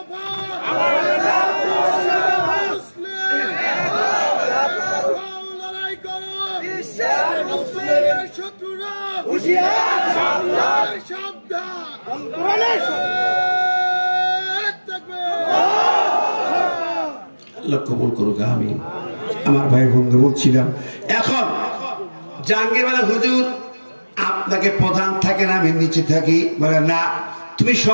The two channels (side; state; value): both; inverted; correlation -1.00